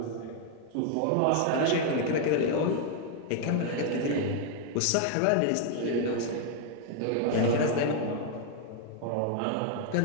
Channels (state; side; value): different; both; correlation 0.00